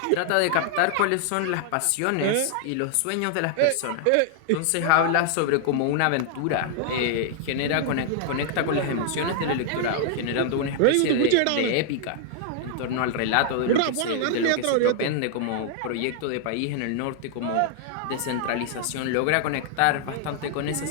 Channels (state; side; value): different; both; correlation -0.01